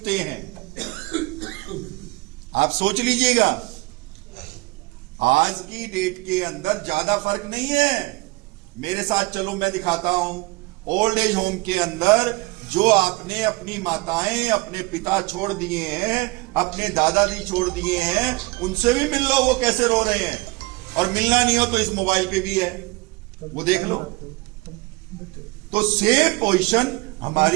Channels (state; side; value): quieter; left; 23.9 dB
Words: हैं। आप सोच लीजिएगा, आज की डेट के अंदर ज्यादा फर्क नहीं है। मेरे साथ चलो, मैं दिखाता हूं। ओल्ड एज होम के अंदर जो आपने अपनी माताएं, अपने पिता छोड़ दिए हैं, अपने दादाजी छोड़ दिए हैं, उनसे भी मिल लो वो कैसे रो रहे हैं। और मिलना नहीं हो तो इस मोबाइल पे भी है, वो देख लो। तो सेम पोजीशन